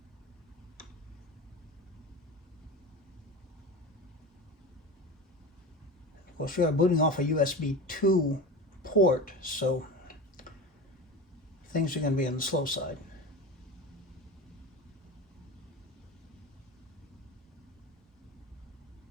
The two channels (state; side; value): normal; both; correlation 0.28